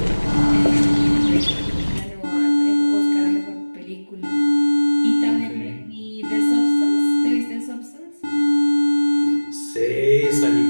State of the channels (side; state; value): both; inverted; correlation -1.00